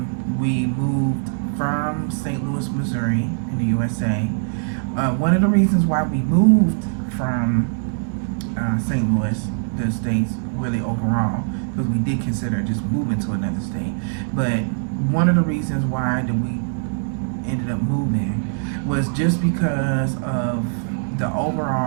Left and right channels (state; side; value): silent; left; digital silence